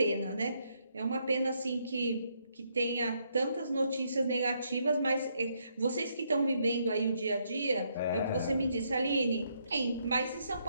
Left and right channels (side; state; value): both; inverted; correlation -0.74